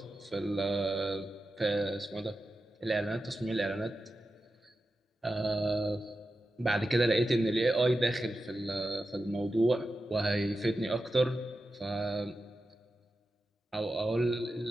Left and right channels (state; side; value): normal; both; correlation 0.91